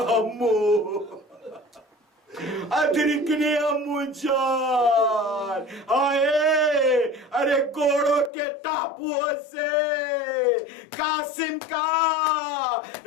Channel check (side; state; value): right; drops out; at 8.3 s